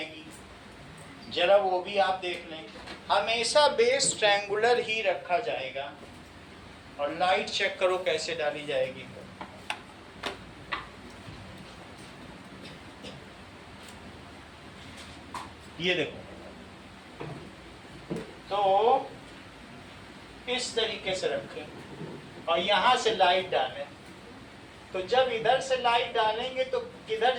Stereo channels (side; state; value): both; identical; correlation 1.00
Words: जरा वो भी आप देख लें। हमेशा बेस ट्रायंगुलर ही रखा जाएगा और लाइट चेक करो कैसे डाली जाएगी। ये देखो, तो इस तरीके से रखें और यहां से लाइट डालें। तो जब इधर से लाइट डालेंगे तो किधर